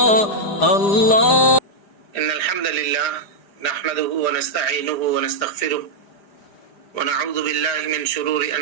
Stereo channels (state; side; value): late; right; 4.9 ms